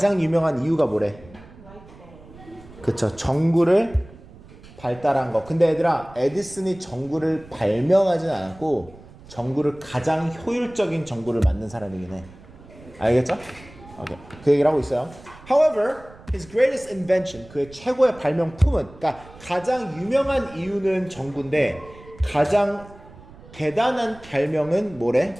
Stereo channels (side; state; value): right; noise; rumble, 21 dB below the sound